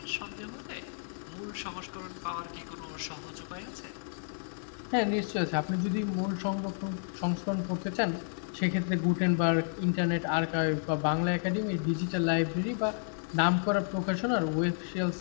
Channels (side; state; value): right; silent; digital silence